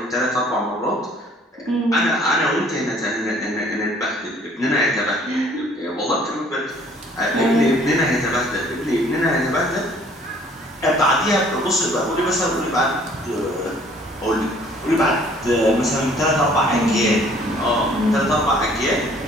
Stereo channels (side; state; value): both; normal; correlation 0.57